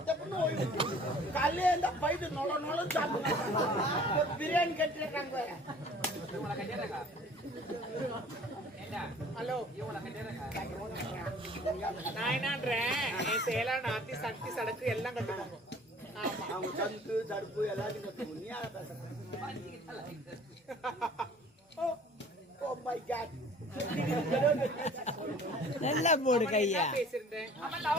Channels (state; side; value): normal; both; correlation 0.50